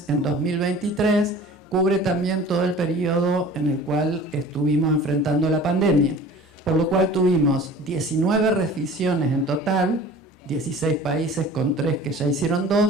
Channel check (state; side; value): normal; both; correlation 0.43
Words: en 2023, cubre también todo el periodo en el cual estuvimos enfrentando la pandemia. Por lo cual tuvimos 19 revisiones en total, 16 países con 3 que ya hicieron